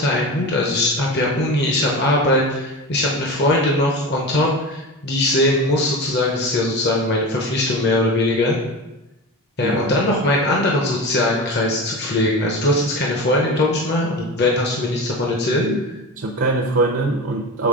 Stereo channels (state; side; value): normal; both; correlation 0.27